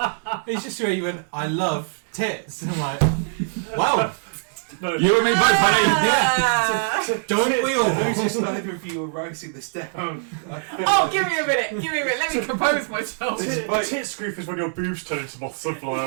It's just where you went, I love tits. And I'm like, wow, No, You and me both, honey. Ah. don't we all? Notice neither of you are writing this down. Oh, give me a minute. Let me compose myself. Tits grief is when your boobs turn into moths and fly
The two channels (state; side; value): silent; left; digital silence